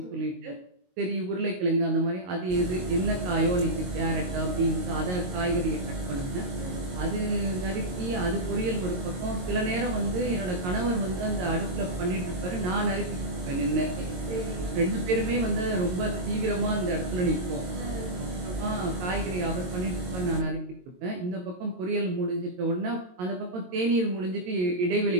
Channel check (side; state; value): left; late; 22 ms